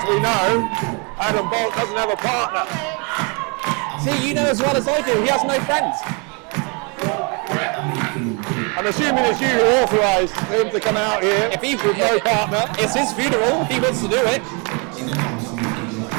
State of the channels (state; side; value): quieter; left; 33.6 dB